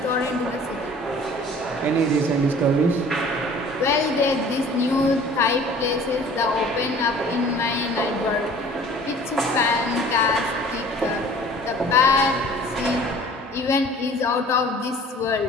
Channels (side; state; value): both; normal; correlation 0.48